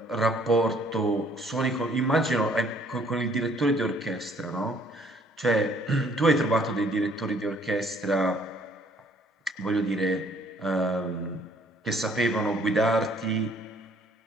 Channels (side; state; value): both; normal; correlation 0.61